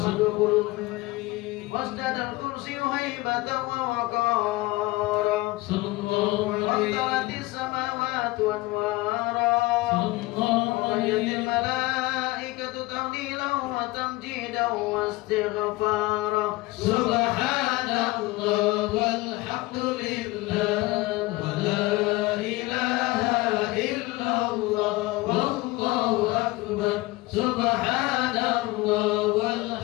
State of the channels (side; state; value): right; quieter; 20.6 dB